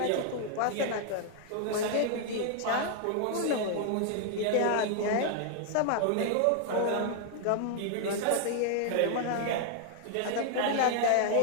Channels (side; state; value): both; different; correlation 0.00